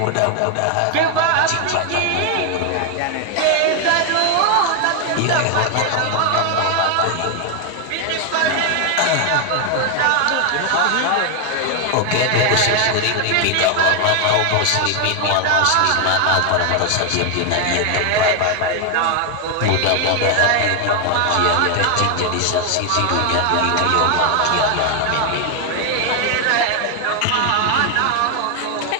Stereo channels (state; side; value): different; both; correlation 0.00